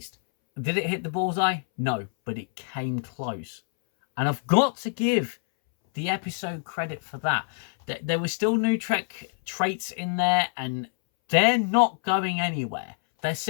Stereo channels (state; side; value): silent; right; 61 dB below the other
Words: Did it hit the bullseye? No, but it came close. And I've got to give the episode credit for that. There were still new Trek traits in there, and they're not going anywhere. They're